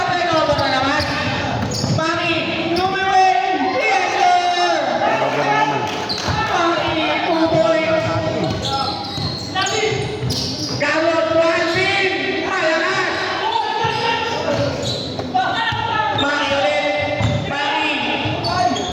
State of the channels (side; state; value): both; identical; correlation 1.00